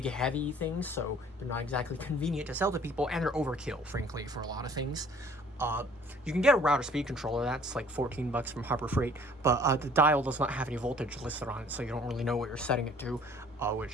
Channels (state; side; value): normal; both; correlation 0.54